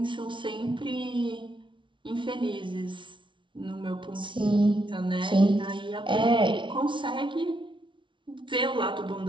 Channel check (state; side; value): late; left; 0.24 ms